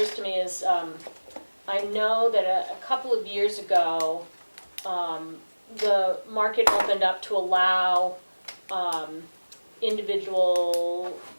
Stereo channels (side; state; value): both; inverted; correlation -1.00